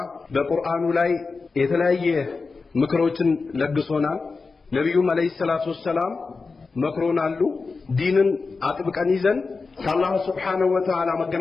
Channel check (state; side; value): quieter; right; 4.3 dB